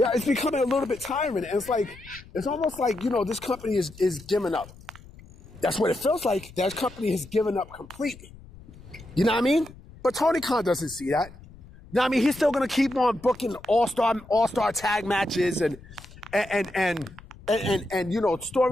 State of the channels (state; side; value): noise; left; rumble, 20 dB below the sound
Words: it's becoming a little bit tiring. And it's almost like, this company is giving up. That's what it feels like. That company has given up completely. You know what I mean? But Tony Khan doesn't see that. You know what I mean? He's still going to keep on booking all-star tag matches and